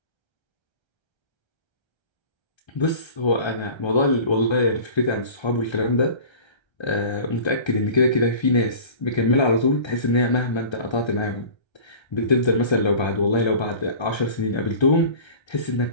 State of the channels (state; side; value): late; right; 1.3 ms